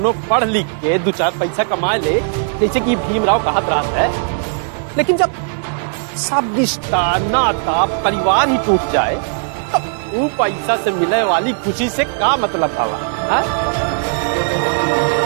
पढ़ लिख के 2-4 पैसा कमा ले, जैसे कि भीमराव कहत रहा है, लेकिन जब सब रिश्ता, नाता, परिवार ही टूट जाए तो वो पैसा से मिलने वाली खुशी से क्या मतलब था?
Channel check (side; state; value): left; silent; digital silence